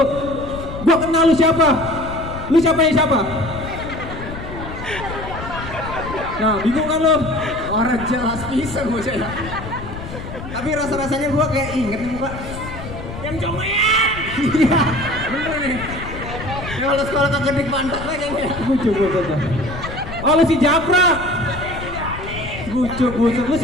Gua kenal lu siapa? Lu siapa? Nah, bingung kan lo? Orang jelas pisan bocah ya. Tapi rasa-rasanya gua kayak inget nih muka. Yang congean. Iya, bener nih. Ya kalau sekolah kagak di pantat kayaknya. Bucuk buset dah. Oh lu si Japra. Bucuk buset, lu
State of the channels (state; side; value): noise; left; rumble, 10 dB below the sound